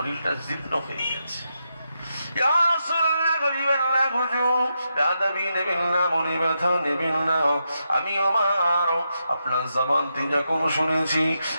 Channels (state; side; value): inverted; both; correlation -0.85